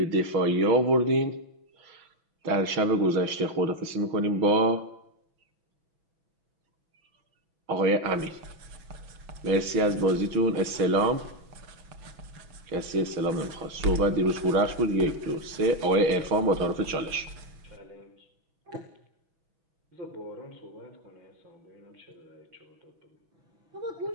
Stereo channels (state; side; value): late; left; 6.1 ms